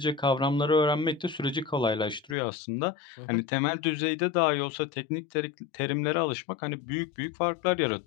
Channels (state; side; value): drops out; right; at 2.4 s